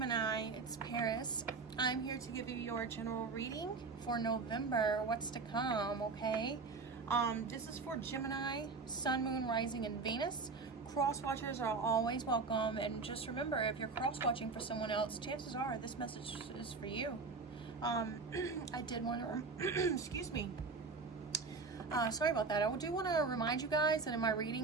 it's Paris. I'm here to give you your general reading for November, what's to come, okay? This is for Gemini, Sun, Moon, Rising, and Venus. Cross-watchers are always welcome, and just remember, if you're cross-watching for someone else, chances are this message is for you. I did want to, excuse me. Sorry about that. I do want to remind you guys that in my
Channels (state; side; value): quieter; left; 4.3 dB